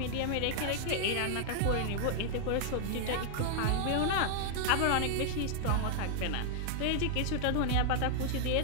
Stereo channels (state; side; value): different; both; correlation -0.01